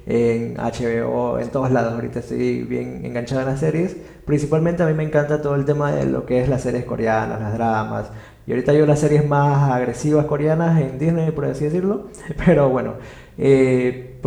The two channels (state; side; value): identical; both; correlation 1.00